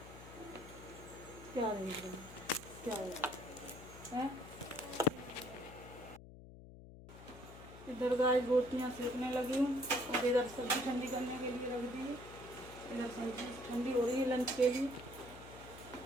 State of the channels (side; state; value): left; noise; hum, 16 dB below the sound